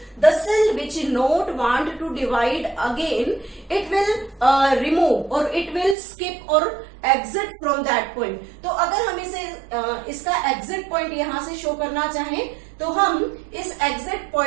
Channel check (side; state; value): left; drops out; at 6.0 s